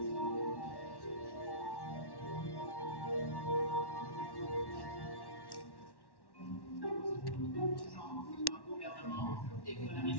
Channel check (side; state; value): right; late; 1.1 ms